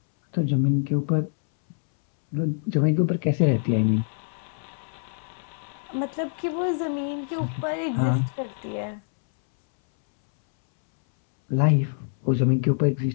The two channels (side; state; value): right; silent; 62 dB below the other